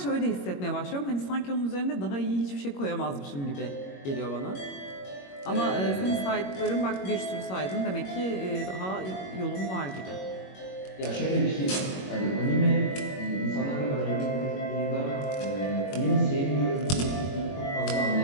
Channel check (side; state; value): right; late; 21 ms